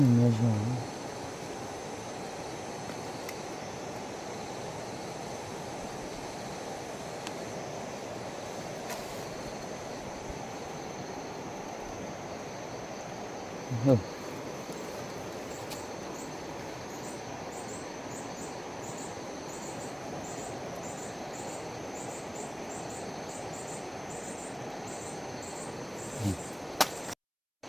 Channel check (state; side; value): identical; both; correlation 1.00